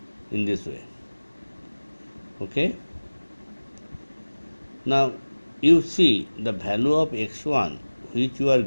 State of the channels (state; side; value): inverted; both; correlation -1.00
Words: in this way. Okay. Now you see the value of x1 which you are